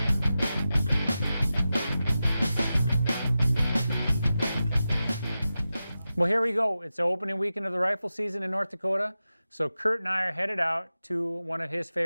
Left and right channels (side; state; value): both; inverted; correlation -0.93